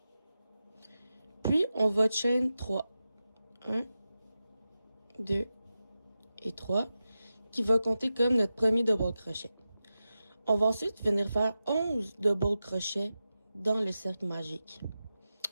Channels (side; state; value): both; inverted; correlation -0.92